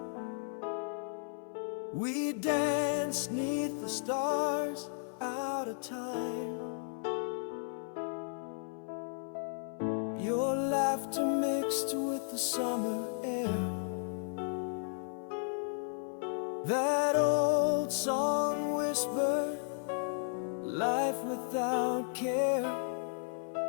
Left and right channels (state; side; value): silent; right; 55 dB below the other